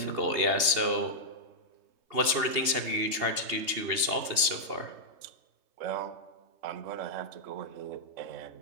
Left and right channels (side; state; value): left; late; 2.8 ms